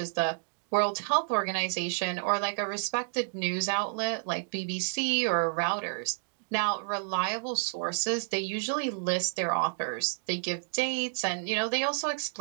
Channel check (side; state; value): left; silent; digital silence